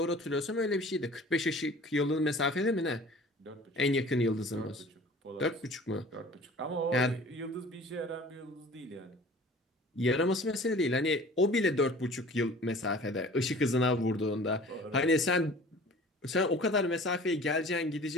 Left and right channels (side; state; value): both; normal; correlation 0.45